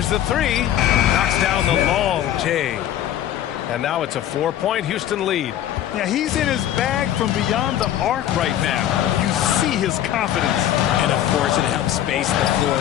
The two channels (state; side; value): quieter; right; 11.6 dB